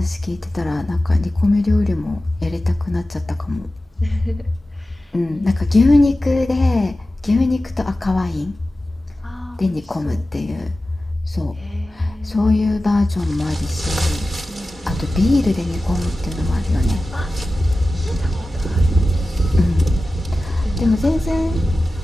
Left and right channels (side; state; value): both; normal; correlation 0.95